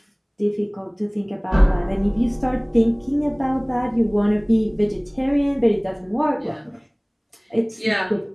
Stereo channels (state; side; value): identical; both; correlation 1.00